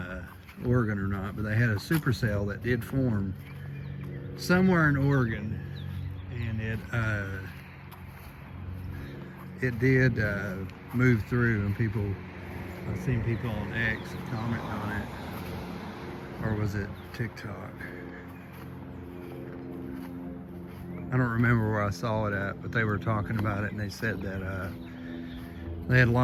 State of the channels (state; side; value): identical; both; correlation 1.00